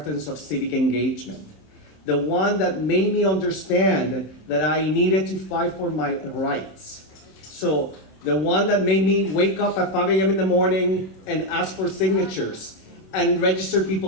of civic engagement. The one that made me understand that I needed to fight for my rights. So, the one that made me wake up at 5 a.m. in the morning and ask for signatures and register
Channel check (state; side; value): late; right; 26 ms